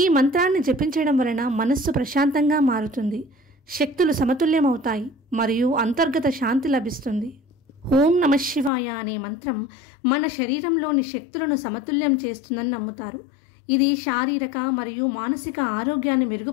మంత్రాన్ని జపించడం వలన మనస్సు ప్రశాంతంగా మారుతుంది, శక్తులు సమతుల్యమవుతాయి మరియు అంతర్గత శాంతి లభిస్తుంది. ఓం నమః శివాయ అనే మంత్రం మన శరీరంలోని శక్తులను సమతుల్యం చేస్తుందని నమ్ముతారు. ఇది శారీరక మరియు మానసిక ఆరోగ్యాన్ని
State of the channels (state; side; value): drops out; right; at 8.7 s